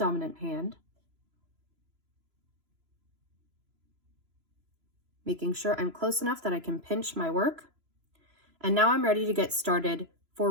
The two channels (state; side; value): late; left; 3.0 ms